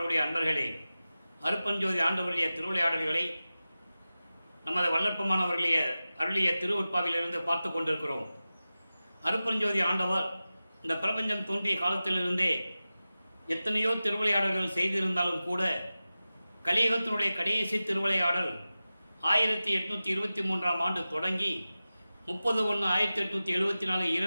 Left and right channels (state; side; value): inverted; both; correlation -0.95